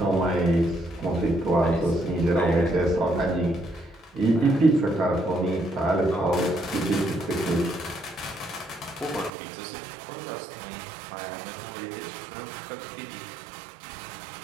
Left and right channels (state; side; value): drops out; left; at 9.3 s